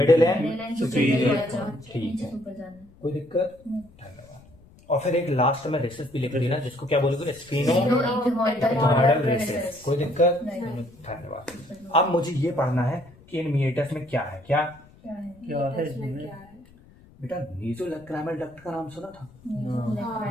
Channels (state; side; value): noise; left; rumble, 25 dB below the sound